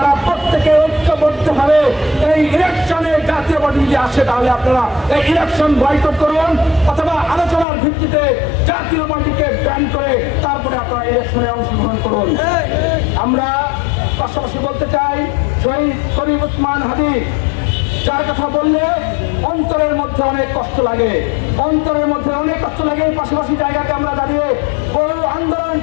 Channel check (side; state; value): right; drops out; at 7.7 s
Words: প্রত্যেকে ঐক্যবদ্ধভাবে এই ইলেকশনে জাতীয় পার্টি যদি আসে, তাহলে আপনারা এই ইলেকশন বয়কট করুন, অথবা আলোচনার ভিত্তিতে জাতীয় পার্টিকে ব্যান করে তারপরে আপনারা ইলেকশনে অংশগ্রহণ করুন। আমরা পাশাপাশি বলতে চাই, শহীদ শরীফ ওসমান হাদি যার কথা বললে অন্তরের মধ্যে অনেক কষ্ট লাগে, অন্তরের মধ্যে অনেক কষ্ট লাগে। পাশাপাশি জায়গাতে আমরা দাঁড়িয়ে বহু আন্দোলন